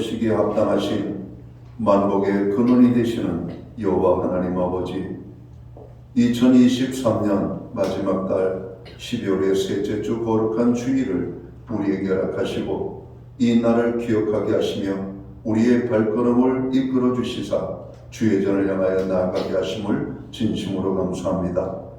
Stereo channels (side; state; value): both; identical; correlation 1.00